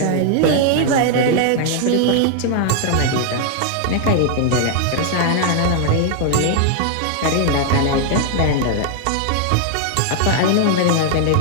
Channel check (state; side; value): different; both; correlation 0.00